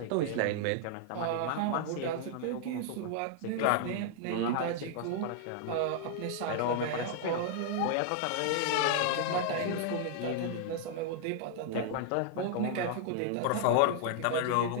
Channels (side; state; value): both; different; correlation -0.01